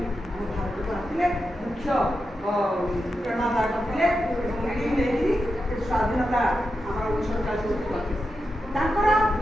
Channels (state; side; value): normal; both; correlation 0.88